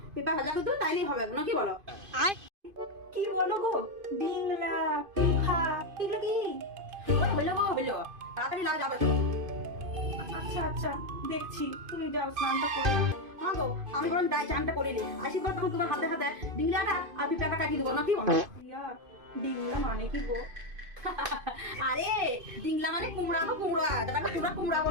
পেঁপা ভাজা করতে তাইলেই হবে না, কি বলো? কি বলো গো, ডিংলা পিঠা এগুলো কি? হইলো গো হইলো, তাড়াতাড়ি লাও যাবে। আচ্ছা আচ্ছা দেখছি, তুমি যাও স্নানটা করো। হ্যাঁ গো, আমি বরং যাই চানটা করে নিই, আসি পর তখন তোমার হাতে হাতে ডিঙ্গাটা আর পেঁপাটা কাটিয়ে দেবো না, কি বলো? রিয়া ডিংলা মানে কি গো? আরে ডিংলা মানে কুমড়া গো, কুমড়া, যেটাকে তোমরা কুমড়া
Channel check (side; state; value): left; late; 2.5 ms